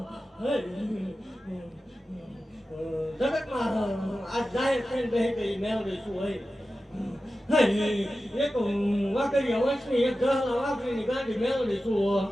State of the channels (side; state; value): both; normal; correlation 0.94